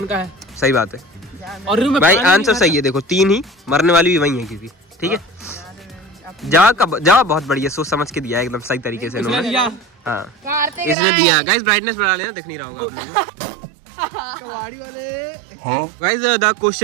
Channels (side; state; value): left; drops out; at 11.0 s